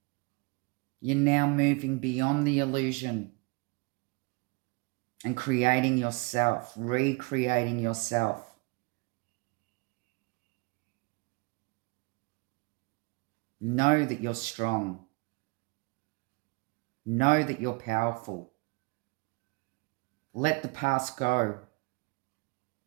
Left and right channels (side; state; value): left; quieter; 29.4 dB